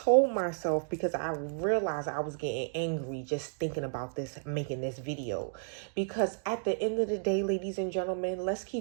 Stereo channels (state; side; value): silent; left; digital silence